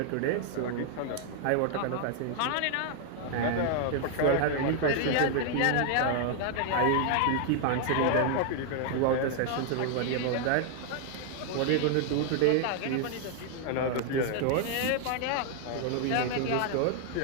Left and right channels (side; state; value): both; different; correlation 0.00